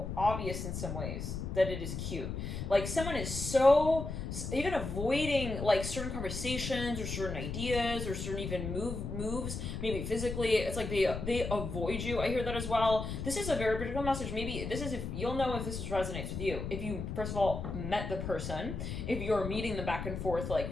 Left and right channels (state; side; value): noise; left; rumble, 5 dB below the sound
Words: obvious in some ways that it is cute. Like, someone is so even avoiding like certain conversations or certain ideas or certain even moves, maybe physically. It's like they avoid you. I hear that as well. This is a very particular message. Maybe this is, if you'll know if this resonates with you. If you first of all met the person, if you're meeting them back and forth